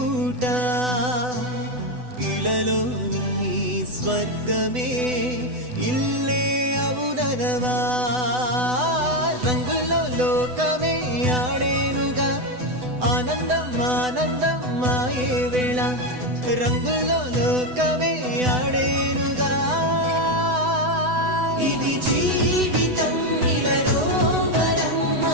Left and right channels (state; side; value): late; left; 8.0 ms